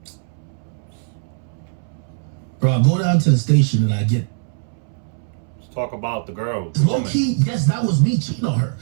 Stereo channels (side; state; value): left; silent; 65 dB below the other